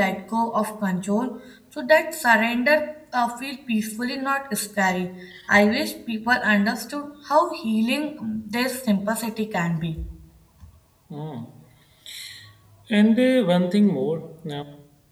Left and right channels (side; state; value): both; identical; correlation 1.00